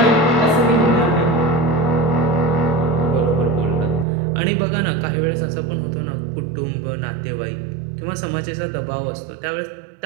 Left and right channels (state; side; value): drops out; left; at 4.0 s